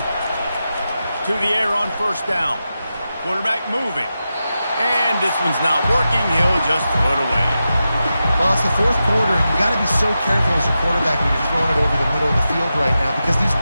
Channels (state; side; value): inverted; both; correlation -0.90